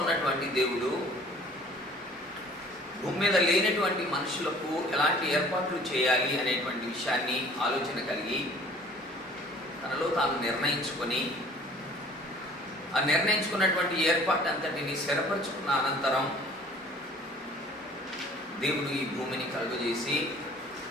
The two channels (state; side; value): normal; both; correlation 0.51